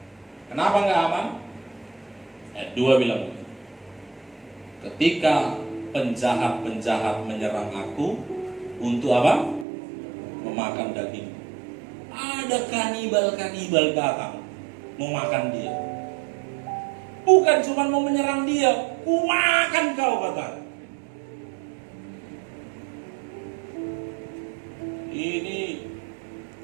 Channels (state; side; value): drops out; left; at 9.7 s